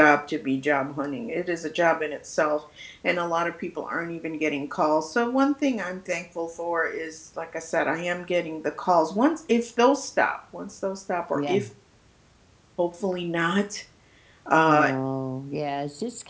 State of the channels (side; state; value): both; identical; correlation 1.00